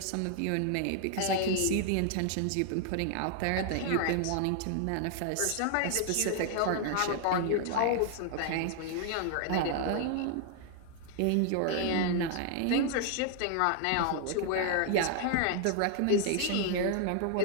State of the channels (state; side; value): different; both; correlation 0.00